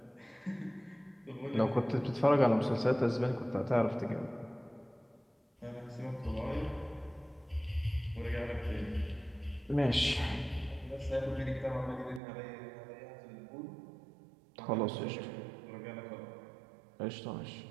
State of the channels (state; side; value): drops out; left; at 12.2 s